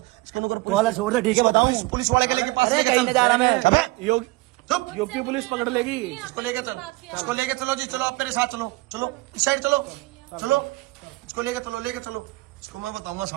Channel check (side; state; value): left; quieter; 21.6 dB